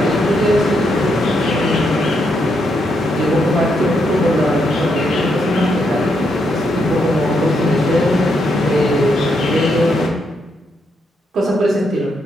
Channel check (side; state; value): both; normal; correlation 0.78